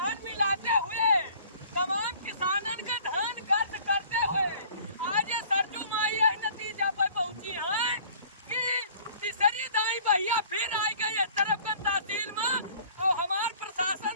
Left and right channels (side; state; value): both; inverted; correlation -0.51